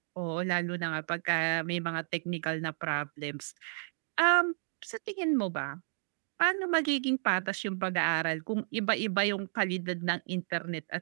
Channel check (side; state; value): left; silent; digital silence